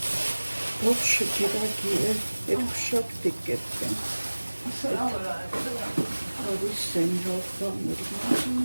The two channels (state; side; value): inverted; both; correlation -1.00